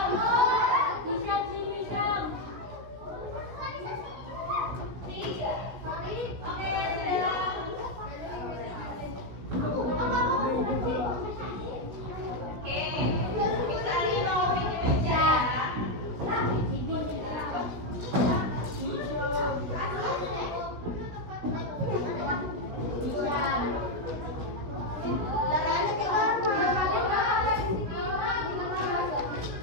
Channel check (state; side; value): late; left; 17 ms